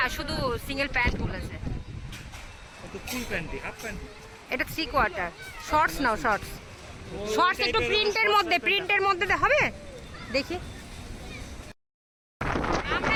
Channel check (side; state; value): both; identical; correlation 1.00